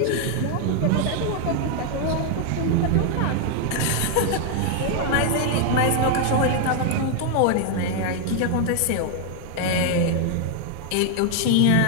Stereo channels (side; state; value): both; different; correlation 0.00